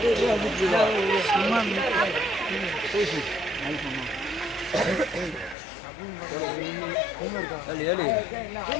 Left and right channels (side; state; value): right; drops out; at 5.6 s